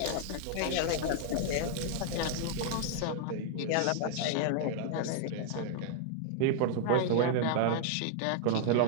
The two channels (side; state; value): both; different; correlation 0.00